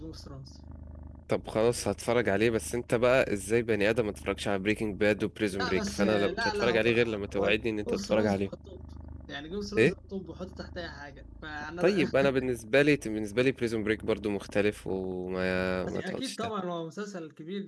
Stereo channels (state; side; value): identical; both; correlation 1.00